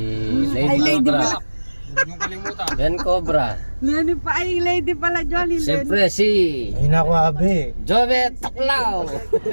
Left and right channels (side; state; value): both; inverted; correlation -1.00